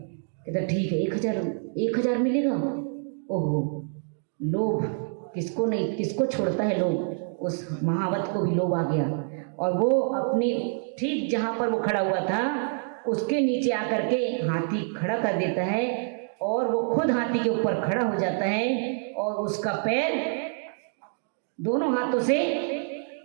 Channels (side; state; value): left; silent; 60 dB below the other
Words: कहता ठीक है, 1000 मिलेगा। ओहो, लोभ किसको नहीं, किसको छोड़ता है लोभ। उस महावत को भी लोभ आ गया और वो अपने ठीक जहाँ पर वो खड़ा हुआ था उसके नीचे आकर के हाथी खड़ा कर देता है और वो खुद हाथी के ऊपर खड़ा हो जाता है और उसका पैर दोनों हाथों से